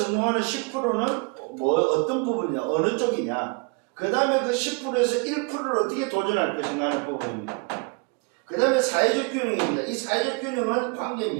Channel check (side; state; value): left; quieter; 31.8 dB